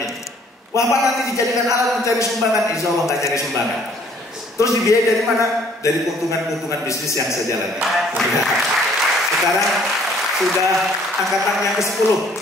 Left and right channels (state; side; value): normal; both; correlation 0.59